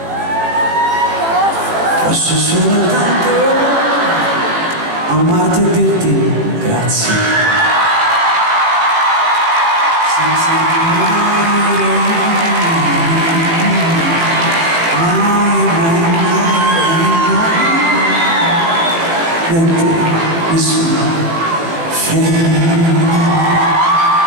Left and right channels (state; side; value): late; left; 18 ms